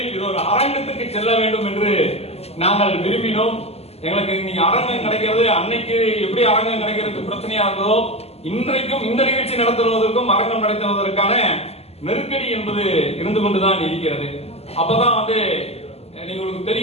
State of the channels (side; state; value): right; late; 0.29 ms